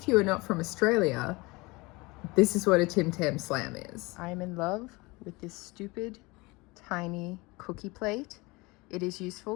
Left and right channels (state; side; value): quieter; right; 24.1 dB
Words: you are not from Australia, this is what a Tim Tam Slam is. I'm in love with this stupid tiny cookie plate. It is